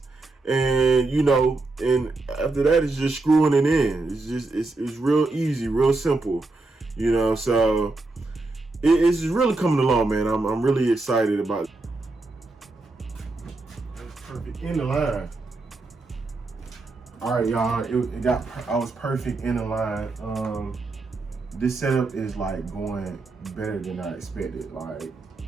And and after that, it's just screwing it in. It's real easy, real simple, so it's really coming along, man. I'm really excited about it. That's perfect in the line. All right, y'all. I was perfect in the line. This setup is like going better than I expected. Like,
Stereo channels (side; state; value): left; quieter; 3.2 dB